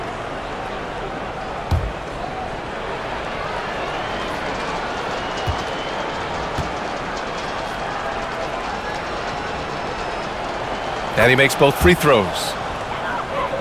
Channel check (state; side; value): identical; both; correlation 1.00